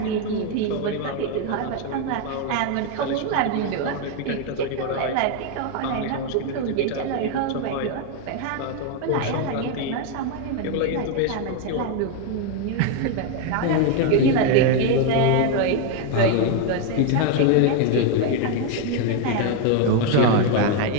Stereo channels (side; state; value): both; different; correlation 0.01